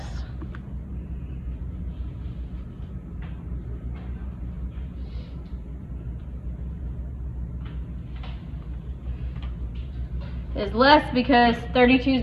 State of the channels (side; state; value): both; identical; correlation 1.00